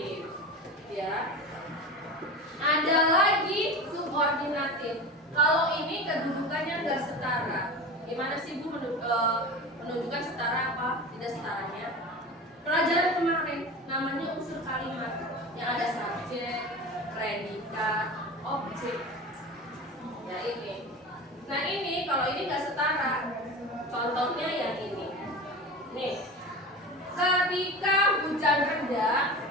Ya. Ada lagi subordinatif. Kalau ini kedudukannya nggak setara, gimana sih Bu menunjukkan setara apa tidak setaranya? Pelajaran kemarin namanya unsur kalimat yang ada subjek, predikat, objek. Ya ini. Nah ini kalau ini nggak setara, contohnya yang ini. Nih, ketika hujan reda,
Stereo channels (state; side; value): normal; both; correlation 0.30